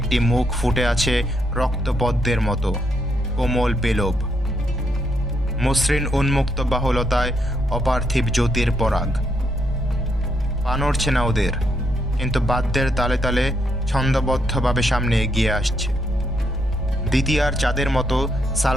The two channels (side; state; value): both; normal; correlation 0.77